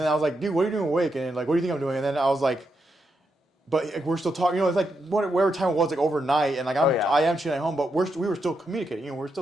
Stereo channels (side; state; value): both; normal; correlation 0.83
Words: I was like, dude, what are you doing awake? And like, what do you think I'm doing? And then I was like, but like, we're still talking. You know, it's like whatever time it was, like overnight, and like I am chilling at home, but we were still communicating. You know, we're